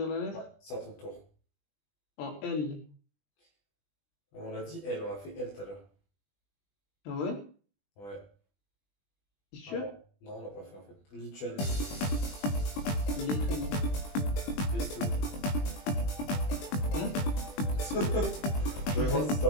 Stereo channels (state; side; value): late; right; 20 ms